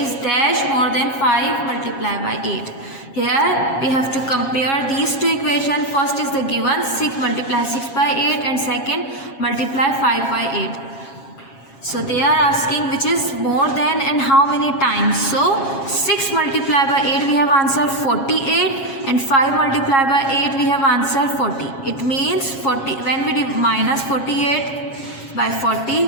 is dash more than 5 multiplied by 8. Here we have to compare these two equations. First is the given 6 multiply 6 by 8 and second multiply 5 by 8. So they are asking which is more than and how many times. So 6 multiplied by 8 we have answer 48 and 5 multiplied by 8 we have answer 40. It means 40, when we minus 48 by 40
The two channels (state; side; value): late; right; 7.3 ms